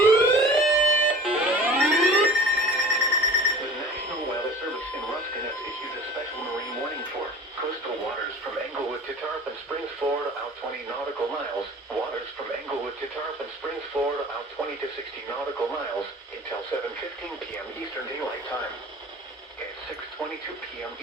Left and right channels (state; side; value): normal; both; correlation 0.41